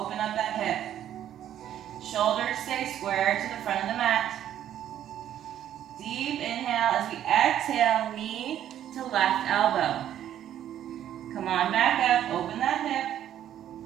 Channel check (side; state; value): left; quieter; 11.0 dB